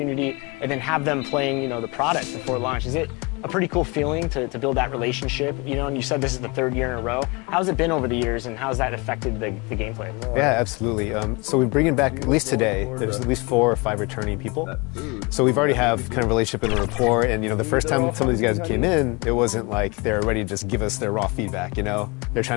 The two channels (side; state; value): right; quieter; 27.6 dB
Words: and then have them playing, you know, the product before launch? Is it a pretty cool feeling to build that relationship? You know, and you said this is the 3rd year in a row. How's it been over the years, and how's that affected the gameplay? Yeah, absolutely. So we're bringing back, at least today, there's at least 4 or 5 returning people. So we've already have kind of relationship and rapport, and, you know, the first time some of these guys came in, it wasn't like they're ready to just give us their raw feedback, you know? They're trying